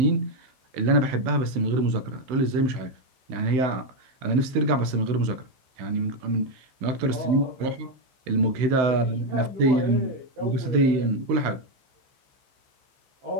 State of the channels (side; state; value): left; late; 16 ms